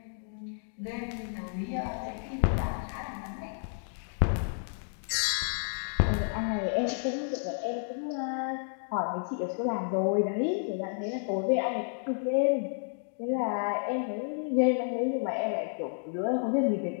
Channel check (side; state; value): right; silent; digital silence